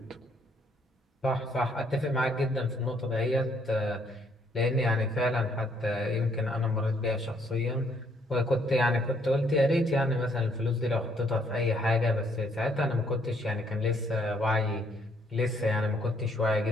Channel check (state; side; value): normal; both; correlation 0.68